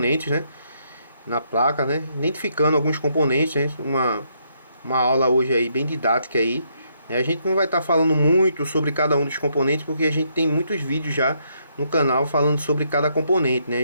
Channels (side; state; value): both; inverted; correlation -0.74